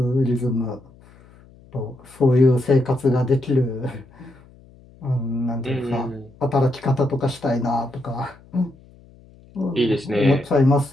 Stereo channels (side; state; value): left; noise; hum, 25 dB below the sound